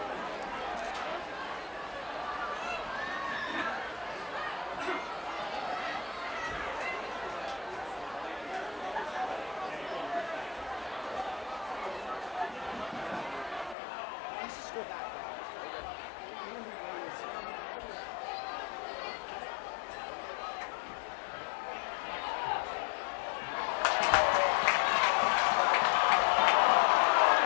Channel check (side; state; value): right; drops out; at 13.8 s